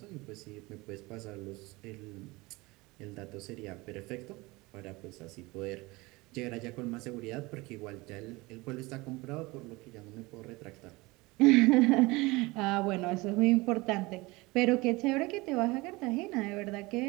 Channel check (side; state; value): left; quieter; 22.8 dB